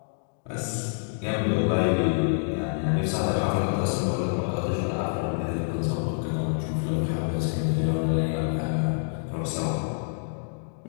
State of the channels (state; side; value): silent; right; digital silence